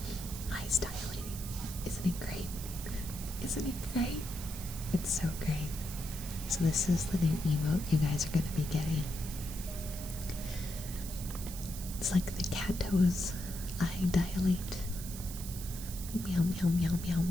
Eyes dilating. Isn't it great? Isn't it great? It's so great. So this is the new emote you guys are going to be getting. It's like the cat toes. Eye dilate. Meow, meow, meow, meow,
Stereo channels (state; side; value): noise; right; hiss, 10 dB below the sound